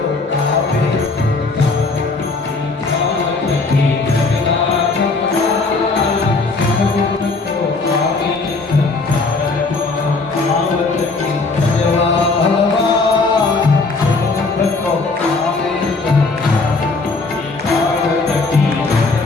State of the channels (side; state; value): right; quieter; 3.8 dB